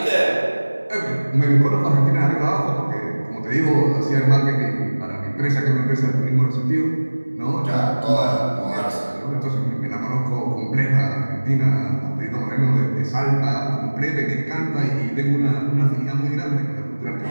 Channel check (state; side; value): inverted; both; correlation -1.00